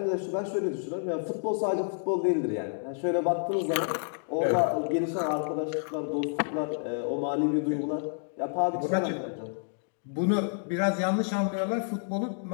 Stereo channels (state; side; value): silent; right; digital silence